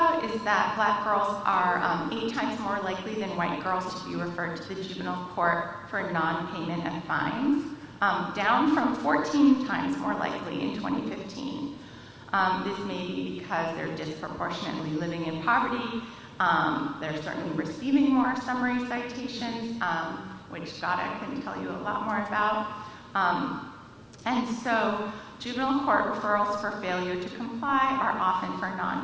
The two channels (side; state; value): both; identical; correlation 1.00